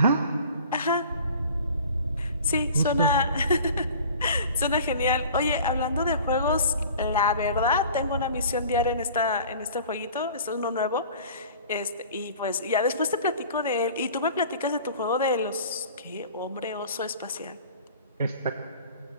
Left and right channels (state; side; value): inverted; both; correlation -0.44